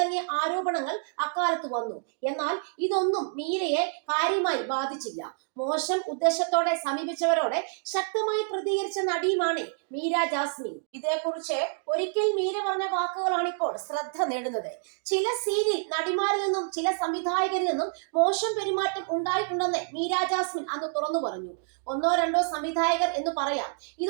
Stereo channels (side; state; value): left; silent; 59 dB below the other